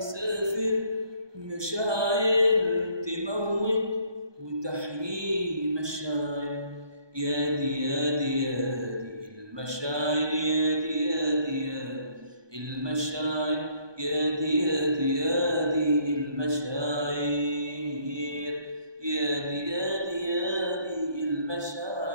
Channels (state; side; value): late; left; 1.2 ms